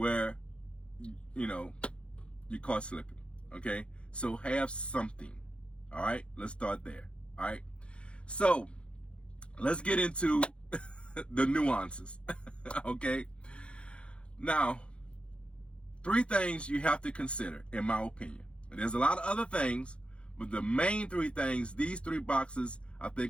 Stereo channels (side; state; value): right; late; 0.058 ms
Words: you know, you're caught slipping, okay? So have something, all right? Let's start there, all right? So let's get into the nuances, okay? Now, 3 things you have to consider, in my opinion. There's a lot of other things, but the main 3 things, these 3 boxes, I